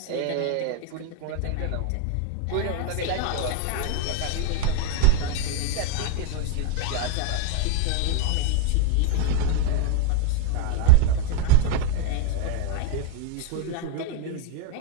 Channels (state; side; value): different; both; correlation 0.00